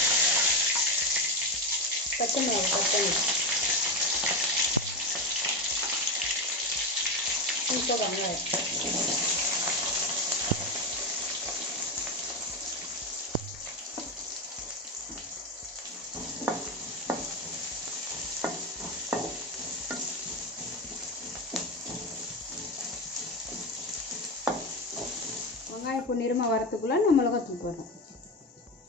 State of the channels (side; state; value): both; normal; correlation 0.14